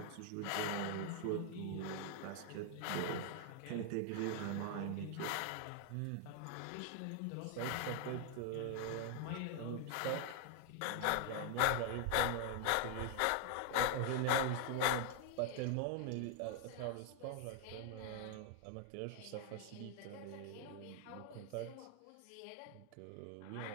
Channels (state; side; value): different; both; correlation 0.00